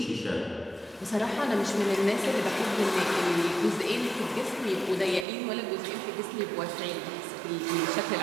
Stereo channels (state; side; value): drops out; left; at 5.2 s